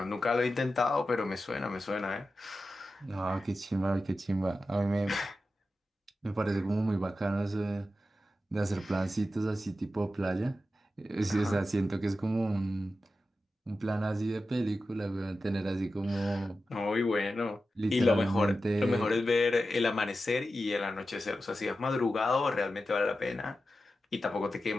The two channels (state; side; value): normal; both; correlation 0.92